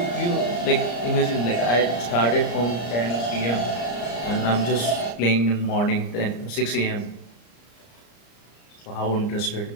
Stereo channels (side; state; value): right; late; 34 ms